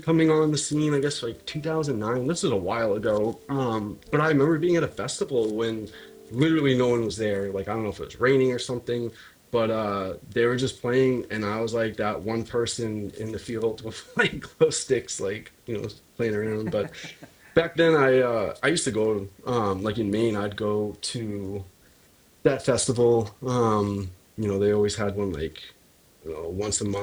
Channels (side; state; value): both; identical; correlation 1.00